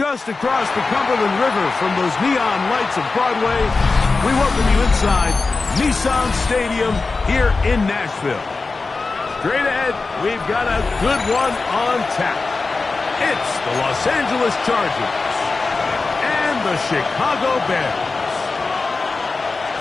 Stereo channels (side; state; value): right; quieter; 3.9 dB